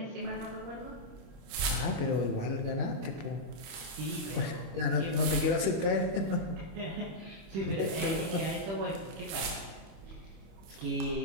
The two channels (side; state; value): left; late; 25 ms